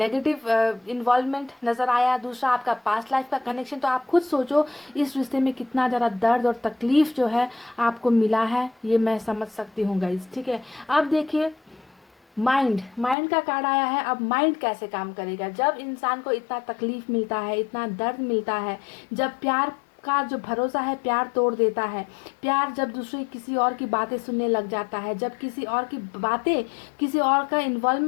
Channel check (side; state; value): right; drops out; at 13.2 s